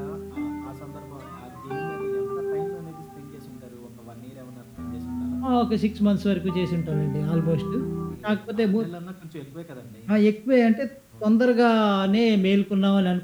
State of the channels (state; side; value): identical; both; correlation 1.00